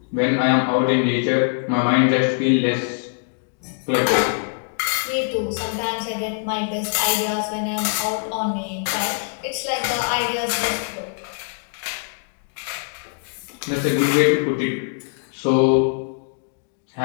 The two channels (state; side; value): silent; right; digital silence